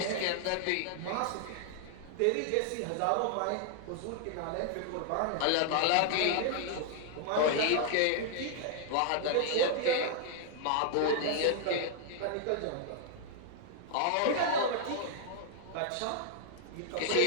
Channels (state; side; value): different; both; correlation 0.00